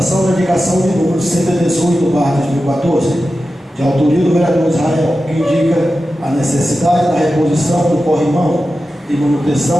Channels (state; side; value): normal; both; correlation 0.92